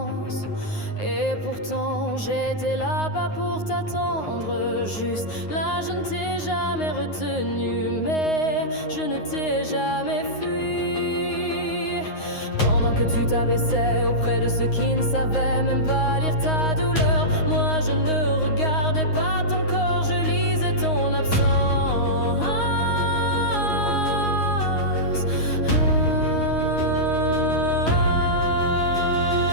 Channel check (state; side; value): late; right; 9.6 ms